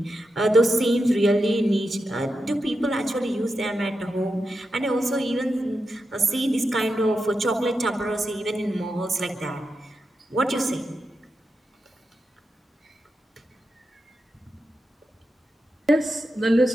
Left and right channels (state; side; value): normal; both; correlation 0.88